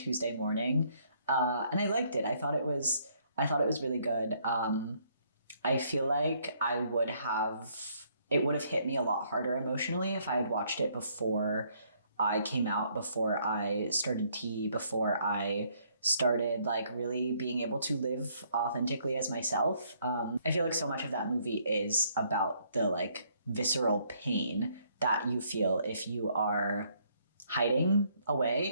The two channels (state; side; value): inverted; both; correlation -0.68